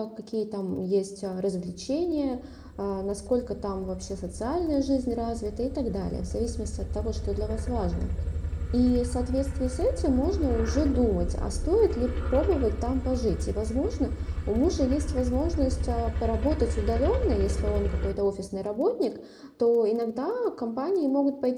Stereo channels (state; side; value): identical; both; correlation 1.00